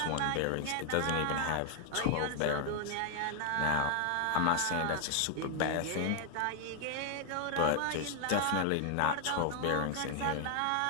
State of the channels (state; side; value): different; both; correlation 0.00